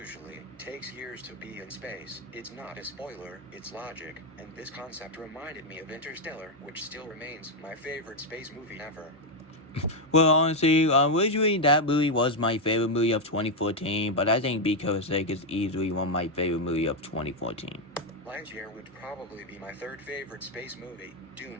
takes years to be in space. It's not a spoiler, it's logic, and this concept reminded me of Interstellar, which still remains my favorite space movie ever. Well, honestly, originally that movie was my favorite movie of 2014, but I think Because Sake is easily one of my favorite movie of 2014. Lightyear would probably be my third favorite space movie.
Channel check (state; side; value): normal; both; correlation 0.03